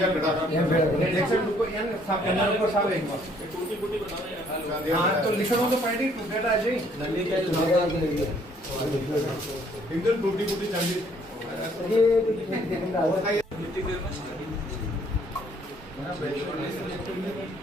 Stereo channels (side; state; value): both; normal; correlation 0.63